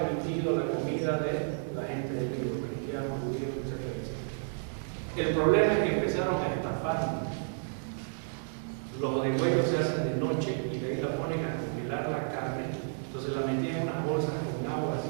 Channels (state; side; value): silent; left; digital silence